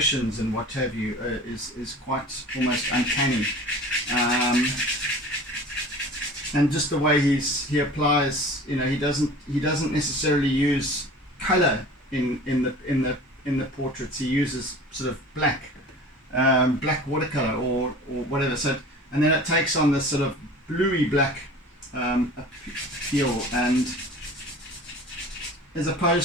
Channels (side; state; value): both; normal; correlation 0.41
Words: and what have you is quite almost uncanny. And just the way he applies, he doesn't necessarily use color in the portraits. He uses sort of black watercolor or whatever. So, and then it takes on this sort of bluey black appeal, and as